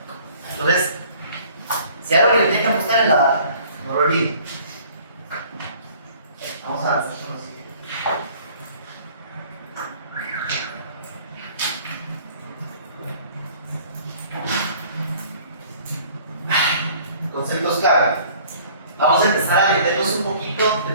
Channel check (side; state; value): both; inverted; correlation -0.53